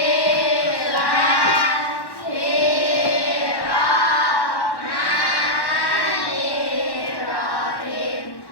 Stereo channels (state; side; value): late; right; 1.1 ms